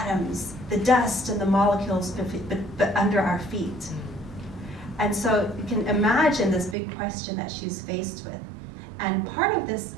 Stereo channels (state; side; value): drops out; left; at 6.8 s